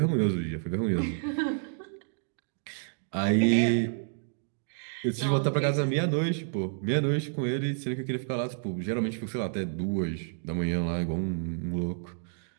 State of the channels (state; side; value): silent; left; digital silence